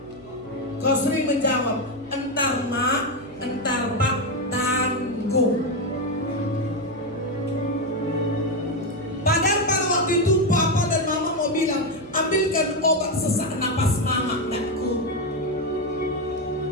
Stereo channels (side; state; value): right; noise; hum, 24 dB below the sound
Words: kau sering menjawab, entar mak, entar pak, tanggung. Padahal pada waktu itu papa dan mama mau bilang, ambilkan obat sesak napas mama, nakku.